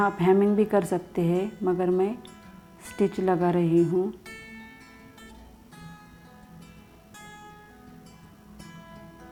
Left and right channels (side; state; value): both; identical; correlation 1.00